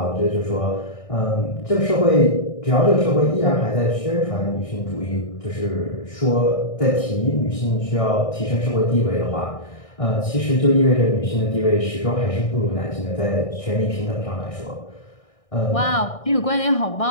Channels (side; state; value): right; late; 1.6 ms